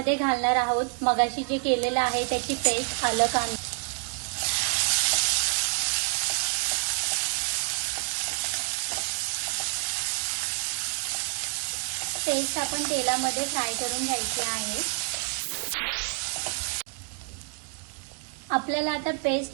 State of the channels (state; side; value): quieter; left; 38.8 dB